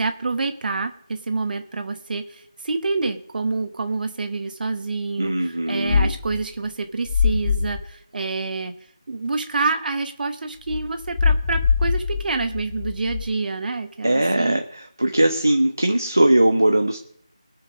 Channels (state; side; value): inverted; both; correlation -0.86